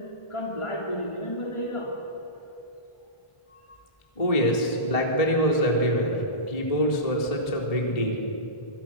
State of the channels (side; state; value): right; late; 1.7 ms